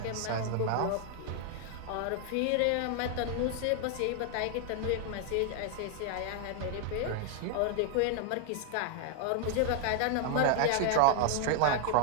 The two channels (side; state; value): both; different; correlation 0.00